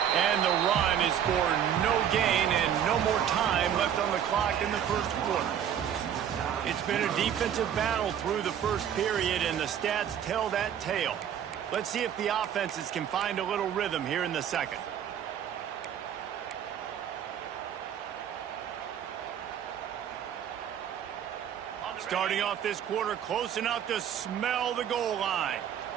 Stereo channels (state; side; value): quieter; left; 9.3 dB